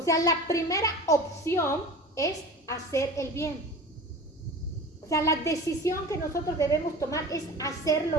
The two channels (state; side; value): normal; both; correlation 0.36